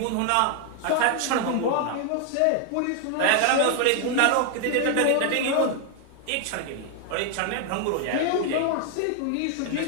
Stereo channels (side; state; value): both; different; correlation 0.00